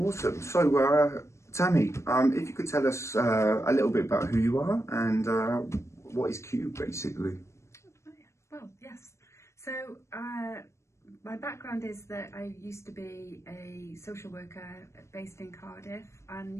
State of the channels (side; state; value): right; late; 0.14 ms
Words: So, Tammy, if you could tell us a little bit about who you are and what is Cube, basically. Well, yes. So, my background is that I used to be a social worker based in Cardiff and